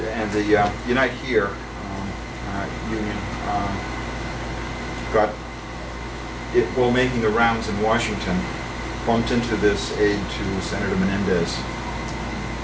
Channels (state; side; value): identical; both; correlation 1.00